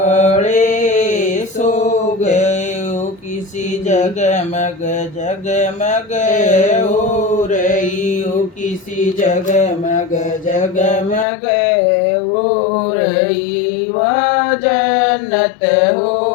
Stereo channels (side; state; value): right; drops out; at 11.2 s